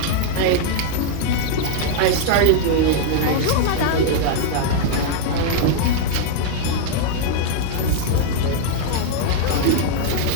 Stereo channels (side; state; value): both; different; correlation 0.00